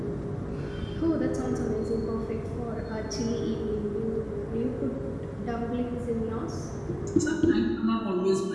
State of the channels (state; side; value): identical; both; correlation 1.00